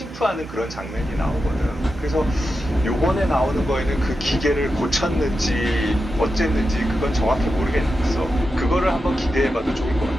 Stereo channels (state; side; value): normal; both; correlation 0.89